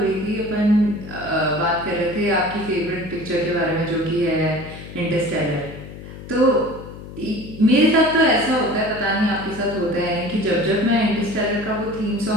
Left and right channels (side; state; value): left; noise; hum, 13 dB below the sound